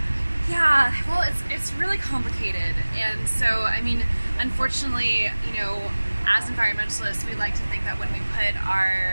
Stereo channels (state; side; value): inverted; both; correlation -1.00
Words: Yeah, well, it's really complicated, and so I mean, unfortunately, you know, as environmentalists, we like to think that when we put